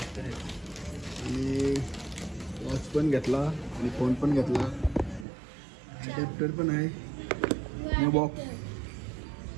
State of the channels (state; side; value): drops out; left; at 5.2 s